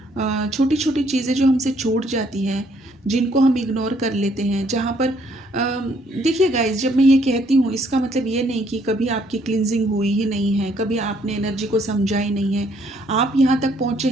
छोटी छोटी चीज़ें जो हमसे छूट जाती हैं, जिनको हम इग्नोर कर लेते हैं, जहाँ पर देखिए गाइस, जब मैं ये कहती हूँ इसका मतलब ये नहीं कि कभी आपकी क्लिनजिंग हुई ही नहीं है, कभी आपने एनर्जी को समझा ही नहीं है। आप यहाँ तक पहुँचे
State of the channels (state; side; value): normal; both; correlation 0.67